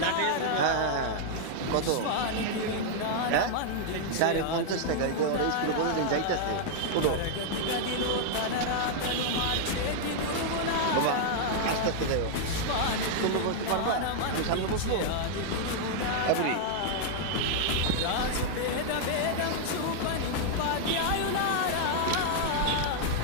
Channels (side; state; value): both; different; correlation -0.01